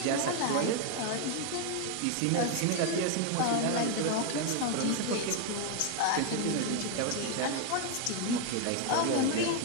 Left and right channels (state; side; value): different; both; correlation 0.00